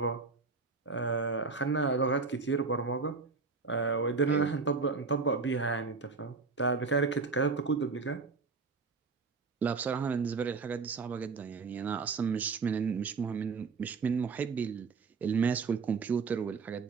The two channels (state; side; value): quieter; left; 4.6 dB